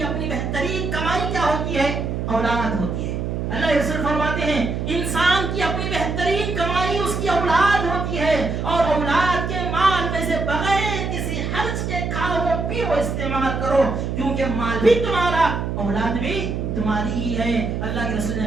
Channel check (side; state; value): right; noise; hum, 2 dB below the sound